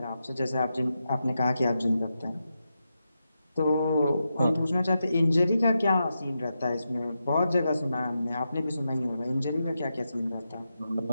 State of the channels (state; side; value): inverted; both; correlation -0.88